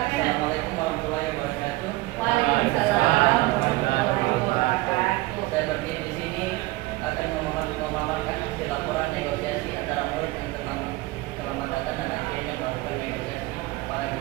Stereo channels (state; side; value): quieter; left; 20.4 dB